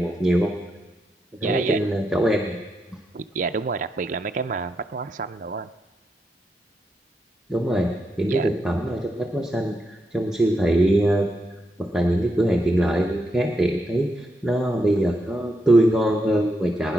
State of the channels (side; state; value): both; normal; correlation 0.83